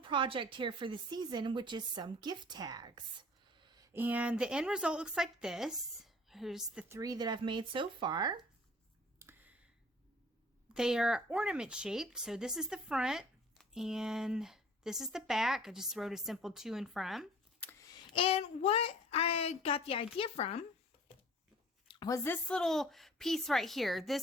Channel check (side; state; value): both; normal; correlation 0.49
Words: here for the season, which is some gift tags. And the end result looks like this. Here's the 3 that I've made so far. They are ornament shaped, so this is the front and this is the back. I just wrote a simple to and from. And what I got the idea from was this little piece right here.